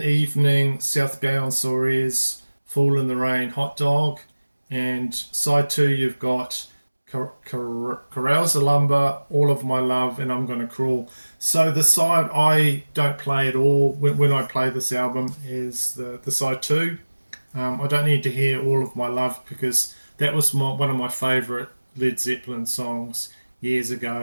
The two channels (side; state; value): both; inverted; correlation -1.00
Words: Evening, South Gay on Soares, Fall in the Rain, Hot Dog. And side two, you've got Carouse the Lumber, All of My Love, and I'm Gonna Crawl. So the side I don't play at all when I play this album is the side two. I don't need to hear All of My Love because that was one of my favourite Led Zeppelin songs years